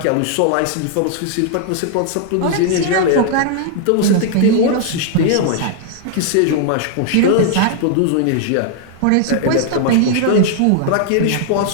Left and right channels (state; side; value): different; both; correlation 0.00